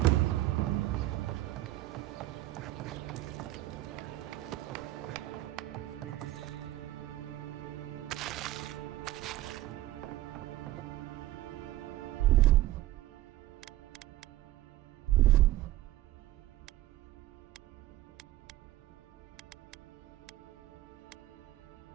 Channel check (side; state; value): left; quieter; 15.4 dB